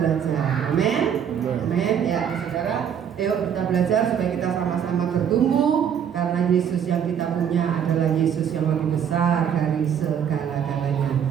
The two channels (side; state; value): left; quieter; 8.4 dB